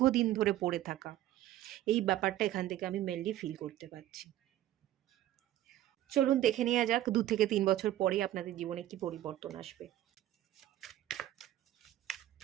ধরে পড়ে থাকা, এই ব্যাপারটা এখান থেকে আমি মেনলি ফিল করতে পারছি। চলুন দেখে নেওয়া যাক 2 থেকে 3 বছর পরে আপনাদের জীবনে কি পরিবর্তন আসবে।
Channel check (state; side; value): quieter; left; 13.4 dB